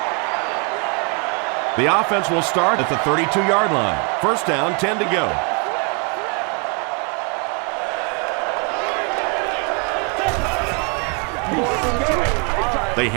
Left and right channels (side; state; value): left; quieter; 35.2 dB